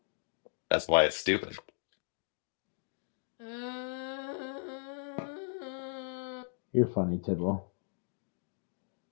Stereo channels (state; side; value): silent; right; digital silence